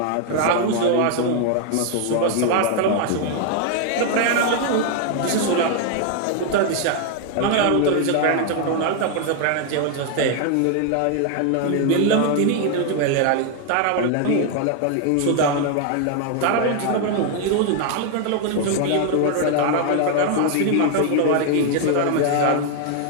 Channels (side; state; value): both; different; correlation 0.00